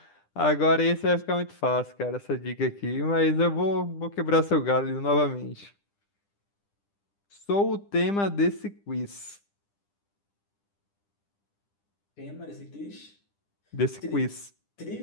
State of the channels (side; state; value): right; late; 10 ms